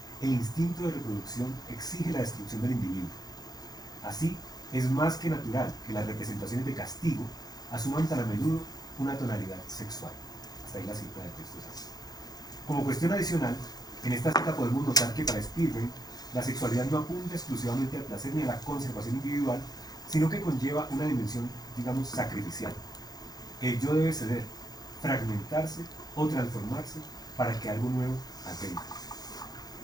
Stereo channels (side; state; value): right; late; 0.19 ms